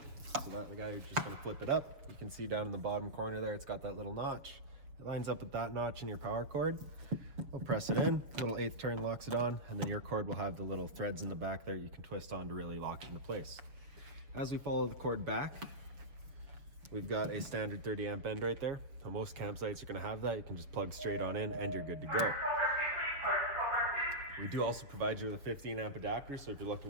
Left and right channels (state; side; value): late; left; 6.7 ms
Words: So that guy, you're just going to flip it up. You can see down in the bottom corner there, it's got that little notch. It lines up with that notch in your power cord. We'll press it in, little 1/8 turn locks it on, and then your cord will have the little threads in the back there you can twist on to really lock it into place. As we follow the cord back, we've got a standard 30 amp end right there. On most campsites, you're going to have that. You can just plug straight on in and you're good to go. We do also provide you with a 15 amp adapter, so if you're looking